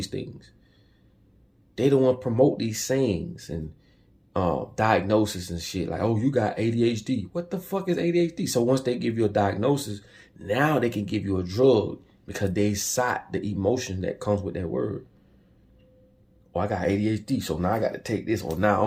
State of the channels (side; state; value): both; identical; correlation 1.00